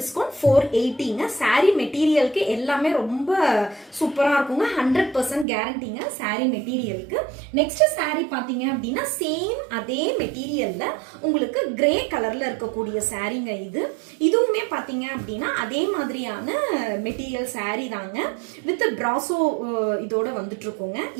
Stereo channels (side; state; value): left; drops out; at 5.5 s